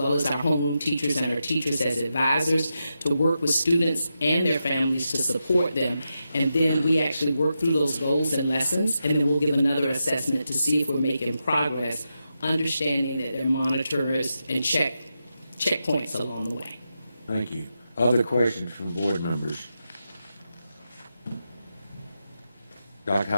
as our homeroom teachers and our teachers as advisors, to work with students and their families to support them. And then we actually work through those goals and lessons, and then we'll give another assessment to see if we're making progress, understanding that there are monitors and checkpoints along the way. Thank you. Other questions from board members? Dr.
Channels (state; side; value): inverted; both; correlation -0.87